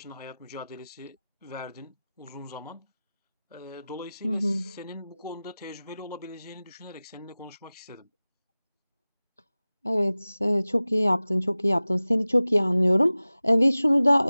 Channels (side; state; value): both; inverted; correlation -0.98